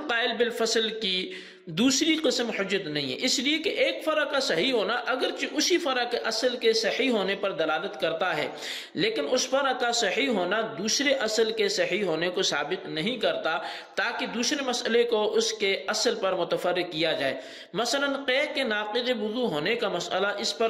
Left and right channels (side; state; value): both; identical; correlation 1.00